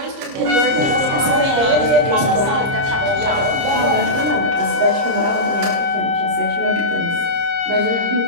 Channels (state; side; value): late; left; 30 ms